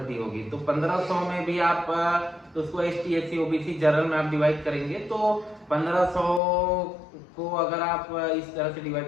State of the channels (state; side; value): drops out; right; at 6.4 s